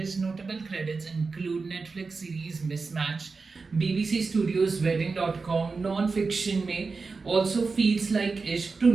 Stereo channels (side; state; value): left; quieter; 4.3 dB